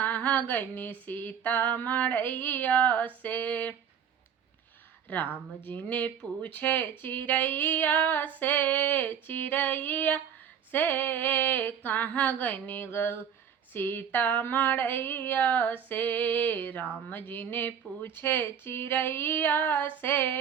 गई सीता मड़ैया से। राम जी ने पूछे चिड़ैया से कहाँ गई सीता मड़ैया से। राम जी ने पूछे चिड़ैया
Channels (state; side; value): quieter; left; 8.2 dB